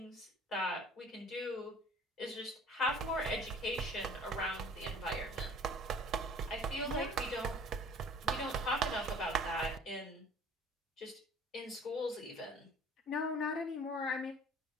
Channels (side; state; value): both; normal; correlation 0.49